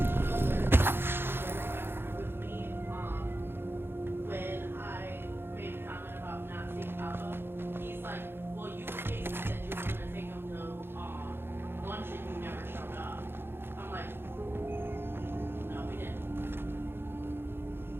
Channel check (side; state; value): left; late; 0.11 ms